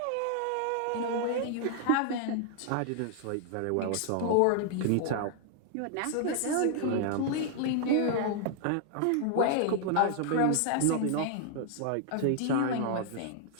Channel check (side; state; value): both; different; correlation 0.00